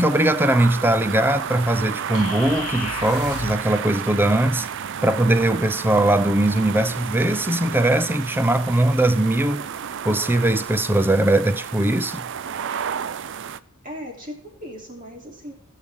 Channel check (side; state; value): both; normal; correlation 0.76